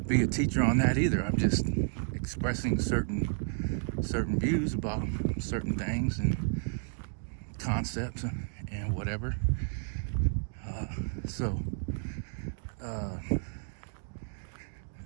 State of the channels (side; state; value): left; silent; digital silence